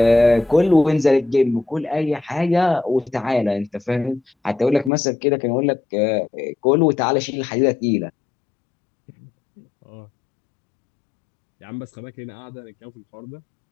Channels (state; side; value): drops out; right; at 4.9 s